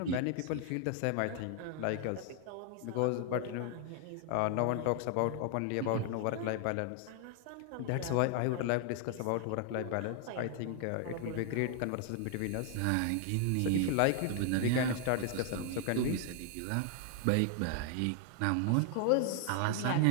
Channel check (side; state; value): both; different; correlation 0.00